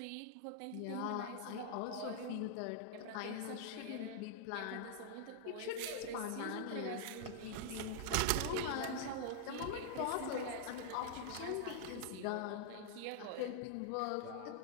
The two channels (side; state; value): both; different; correlation -0.01